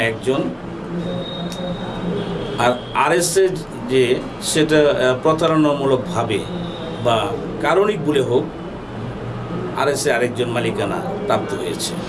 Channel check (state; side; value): identical; both; correlation 1.00